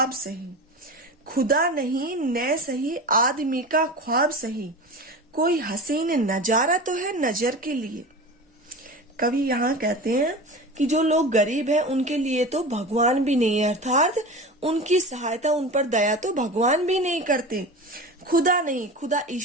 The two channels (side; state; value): both; normal; correlation 0.31